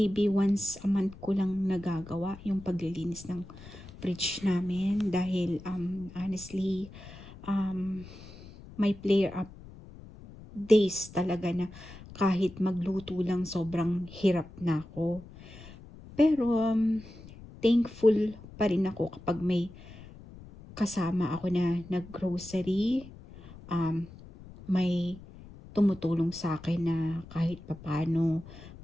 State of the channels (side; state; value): left; noise; rumble, 18 dB below the sound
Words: once a month ko lang nagagawa yung paglilinis ng fridge namin dahil honestly, may flare up days talaga na kahit magluto lang sobrang hirap na ako. Pero thankful pa rin ako kapag may kasama ako na nag-grocery, may tumutulong sa akin na kahit papaano